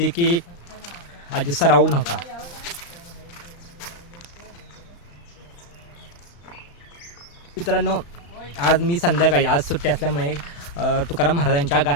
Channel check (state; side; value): late; right; 35 ms